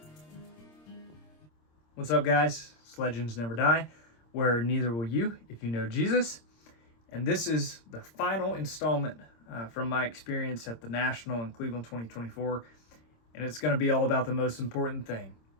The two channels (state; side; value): late; right; 26 ms